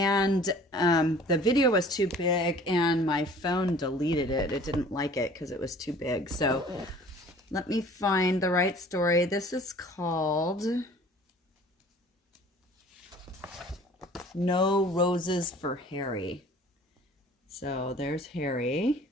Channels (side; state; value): both; normal; correlation 0.49